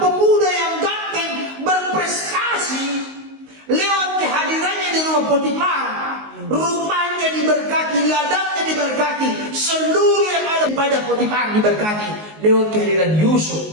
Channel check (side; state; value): left; late; 19 ms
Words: yang ganteng, berprestasi, lewat kehadirannya di rumah Potifar, rumahnya diberkati, ladangnya diberkati, seluruh yang ada pada Potifar diberkati lewat kehadiran Yusuf.